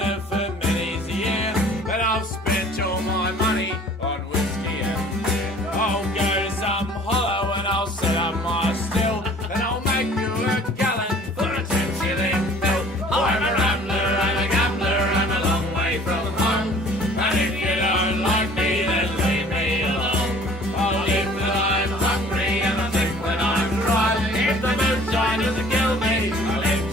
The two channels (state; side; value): normal; both; correlation 0.51